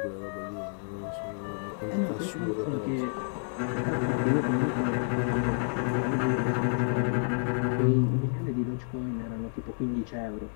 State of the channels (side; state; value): right; silent; 58 dB below the other